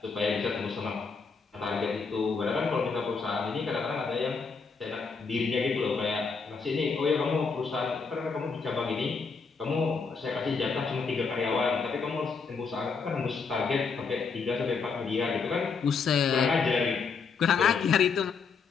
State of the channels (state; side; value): quieter; right; 5.1 dB